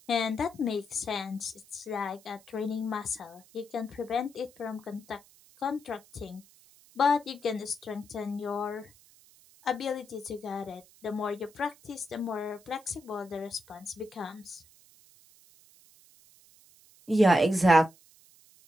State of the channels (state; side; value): noise; right; hiss, 26 dB below the sound